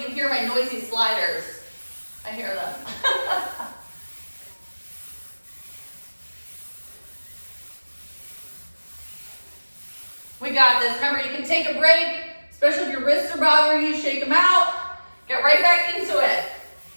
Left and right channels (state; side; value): inverted; both; correlation -1.00